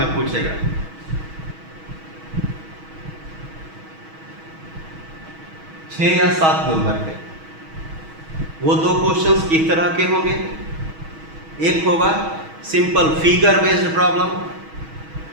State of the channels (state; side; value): late; left; 6.2 ms